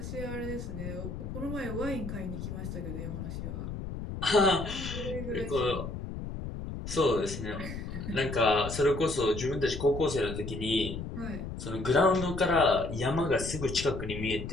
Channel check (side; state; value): left; noise; rumble, 7 dB below the sound